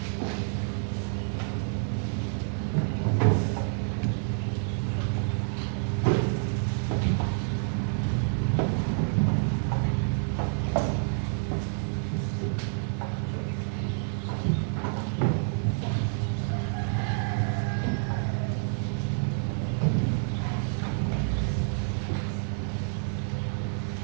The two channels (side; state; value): left; silent; digital silence